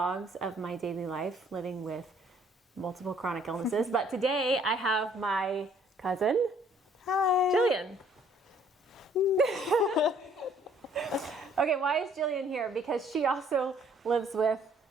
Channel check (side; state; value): both; normal; correlation 0.61